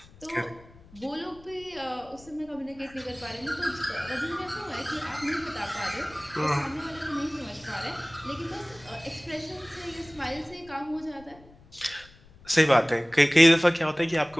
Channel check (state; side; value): noise; left; rumble, 24 dB below the sound